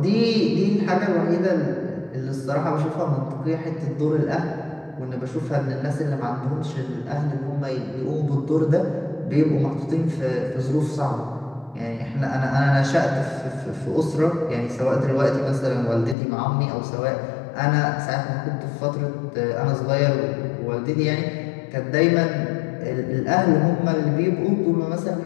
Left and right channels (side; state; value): right; drops out; at 16.2 s